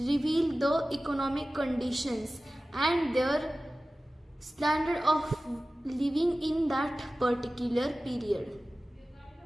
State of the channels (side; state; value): both; normal; correlation 0.96